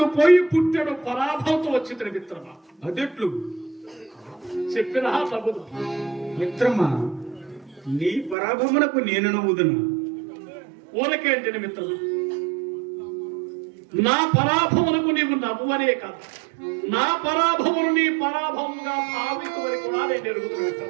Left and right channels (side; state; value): left; drops out; at 8.3 s